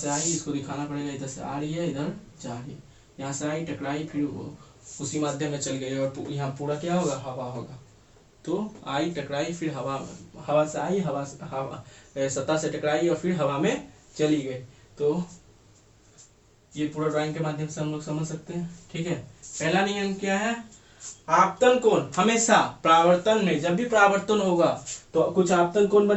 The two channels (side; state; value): both; identical; correlation 1.00